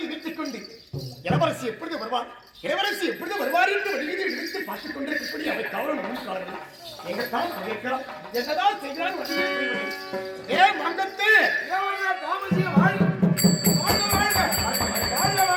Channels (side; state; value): both; identical; correlation 1.00